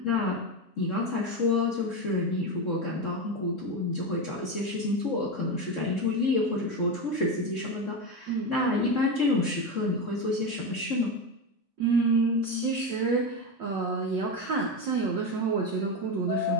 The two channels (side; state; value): both; normal; correlation 0.16